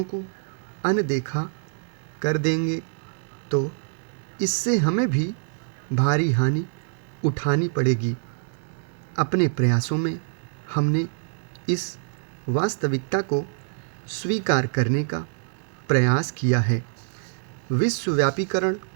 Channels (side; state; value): left; silent; 58 dB below the other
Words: को अनदेखा कर देंगे तो इससे हमें भी भारी हानि उठानी पड़ेगी। अपने प्रयासों में हमने इस वास्तविकता को स्वीकार करने का प्रयास किया है। विश्वव्यापीकरण